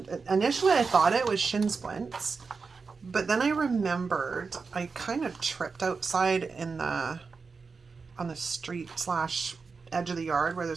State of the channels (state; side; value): quieter; left; 4.8 dB